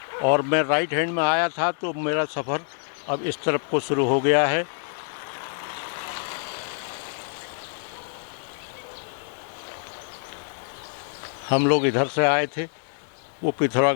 और मैं राइट हैंड में आया था, तो मेरा सफ़र अब इस तरफ को शुरू हो गया है। हम लोग इधर से आए थे, वो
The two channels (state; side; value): silent; right; digital silence